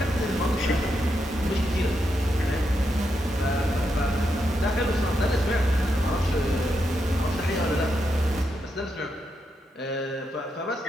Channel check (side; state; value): both; normal; correlation 0.83